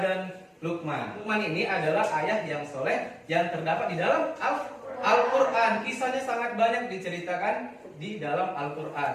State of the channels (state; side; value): identical; both; correlation 1.00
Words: Luqman. Luqman ini adalah ayah yang soleh yang terdapat di dalam Al-Quran. Kisahnya sangat banyak diceritakan di dalam